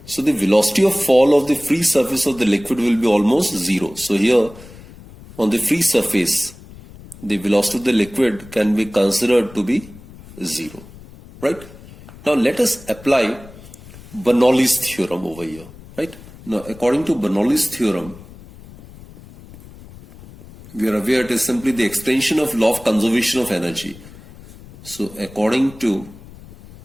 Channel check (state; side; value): noise; left; rumble, 19 dB below the sound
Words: So the velocity of fall of the free surface of the liquid will be almost zero. So here on the free surface, the velocity of the liquid can be considered to be zero. Right? Now let us apply Bernoulli's theorem over here. Right? Now according to Bernoulli's theorem, we are aware it is simply the extension of law of conservation of energy. So according to